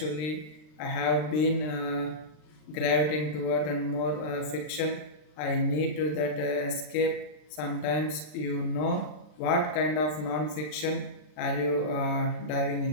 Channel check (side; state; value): right; late; 39 ms